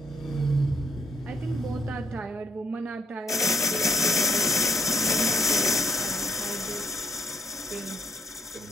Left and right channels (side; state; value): both; normal; correlation 0.74